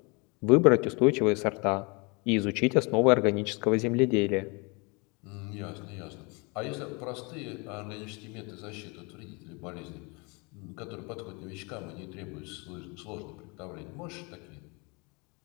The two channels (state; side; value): quieter; right; 29.7 dB